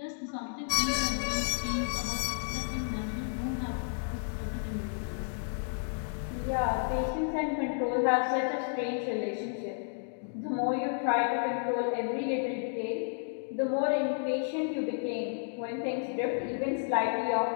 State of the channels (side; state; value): right; silent; digital silence